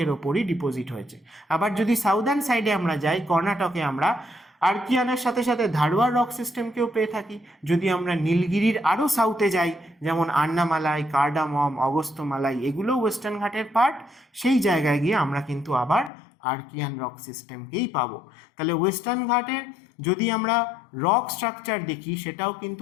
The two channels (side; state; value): right; drops out; at 16.1 s